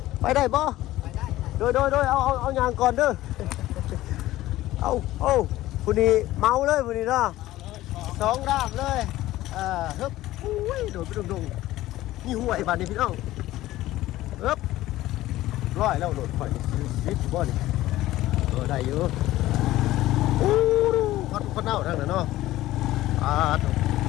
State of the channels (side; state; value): right; quieter; 15.8 dB